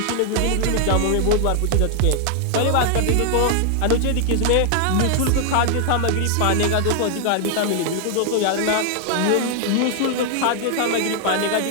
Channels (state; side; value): different; both; correlation 0.00